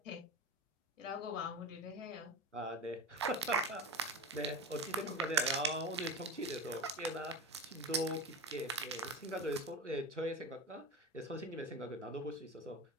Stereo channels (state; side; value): normal; both; correlation 0.27